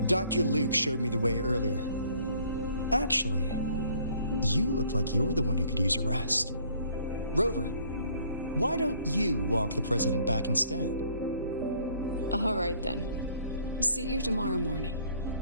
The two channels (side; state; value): both; inverted; correlation -0.60